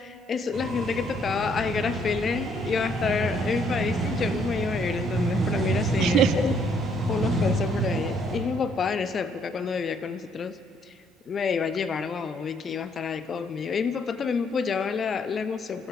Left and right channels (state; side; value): normal; both; correlation 0.68